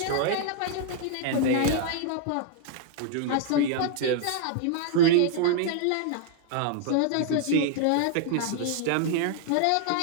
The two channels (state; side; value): different; both; correlation 0.00